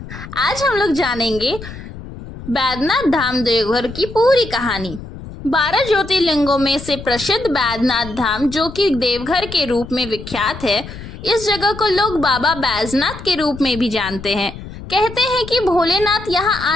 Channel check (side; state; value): left; noise; rumble, 13 dB below the sound